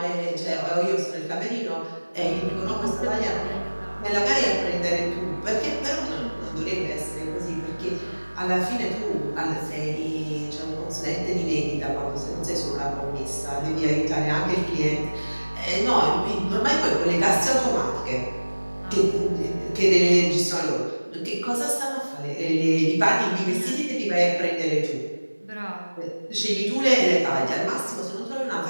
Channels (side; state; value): both; inverted; correlation -1.00